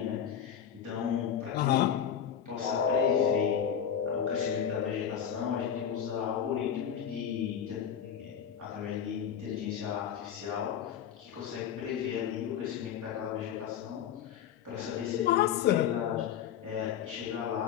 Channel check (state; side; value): quieter; right; 8.7 dB